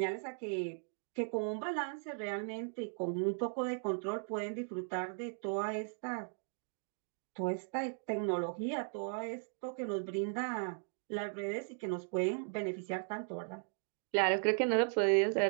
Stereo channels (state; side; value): silent; left; 53 dB below the other